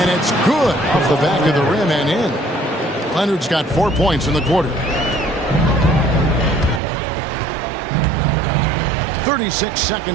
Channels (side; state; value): left; drops out; at 6.8 s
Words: it's good off the back of the rim and in. Leonard's got 4 points in the quarter. 36